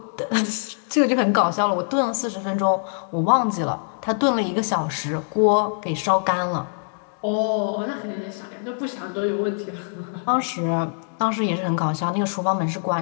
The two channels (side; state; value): right; silent; digital silence